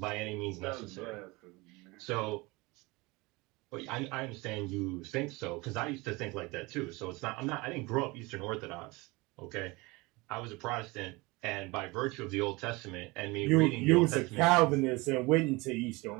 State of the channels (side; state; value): left; quieter; 24.0 dB